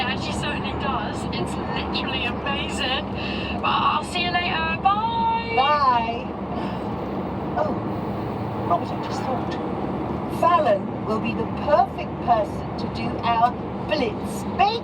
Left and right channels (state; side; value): identical; both; correlation 1.00